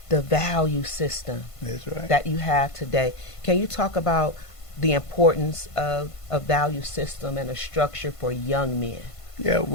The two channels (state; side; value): late; right; 1.5 ms